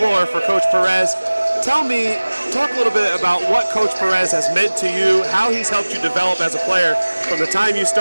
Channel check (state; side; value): inverted; both; correlation -1.00